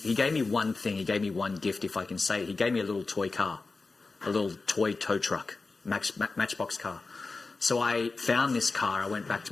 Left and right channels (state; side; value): quieter; right; 3.9 dB